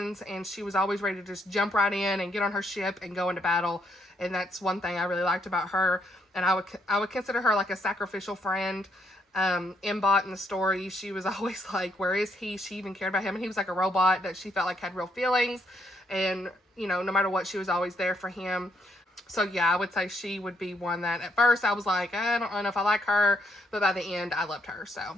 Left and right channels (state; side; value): normal; both; correlation 0.73